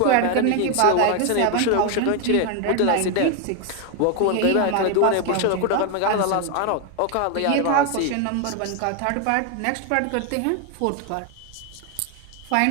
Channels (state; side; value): different; both; correlation 0.01